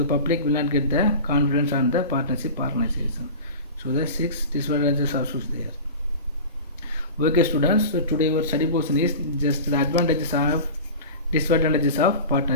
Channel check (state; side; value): inverted; both; correlation -0.33